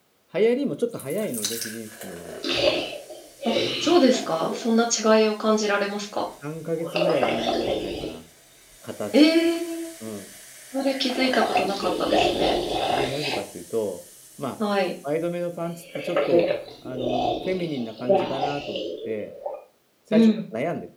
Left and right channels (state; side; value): identical; both; correlation 1.00